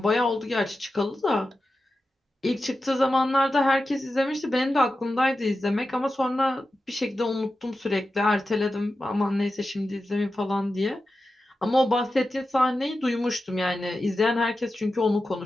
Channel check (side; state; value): both; normal; correlation 0.92